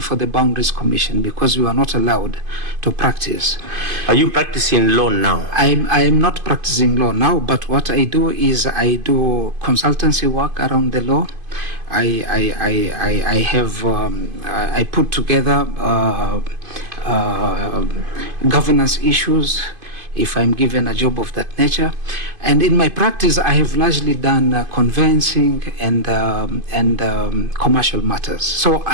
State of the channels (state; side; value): late; left; 2.5 ms